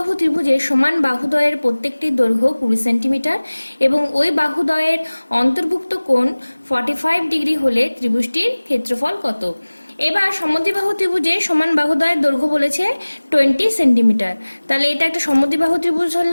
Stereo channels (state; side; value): inverted; both; correlation -1.00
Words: ত্রিভুজের সমান বাহুদ্বয়ের প্রত্যেকটির দৈর্ঘ্য 20 সেন্টিমিটার এবং ওই বাহুদ্বয়ের অন্তর্ভুক্ত কোণ 45 ডিগ্রি হলে ত্রিভুজটির ক্ষেত্রফল কত? এবার সমদ্বিবাহু ত্রিভুজের সমান বাহুদ্বয়ের দৈর্ঘ্য বলেছে 20 সেন্টিমিটার। তাহলে এটা একটা সমদ্বিবাহু ত্রিভুজ